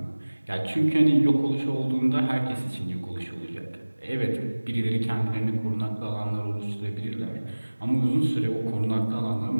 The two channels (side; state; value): both; inverted; correlation -1.00